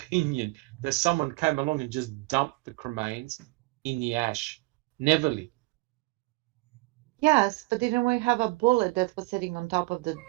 that someone came along and just dumped the cremains in the ash. Neverly. Yes, but didn't we have a bullet that was sitting on top of the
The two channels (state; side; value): quieter; left; 24.2 dB